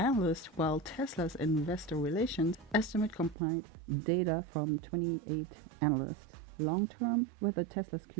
while Tesla's investor relations estimate combined data from 28 analysts. Long term, whether Tesla's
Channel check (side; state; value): left; drops out; at 3.4 s